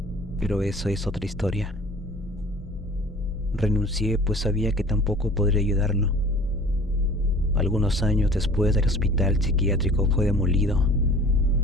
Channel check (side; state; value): both; normal; correlation 0.46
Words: pero eso es otra historia. Renuncié pues sabía que tampoco podría ayudarlo. Algunos años después, el hospital psiquiátrico fue demolido.